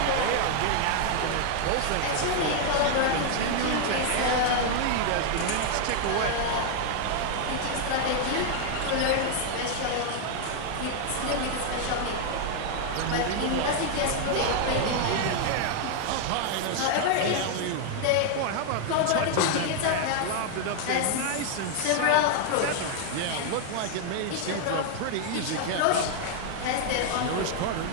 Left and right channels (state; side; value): different; both; correlation 0.00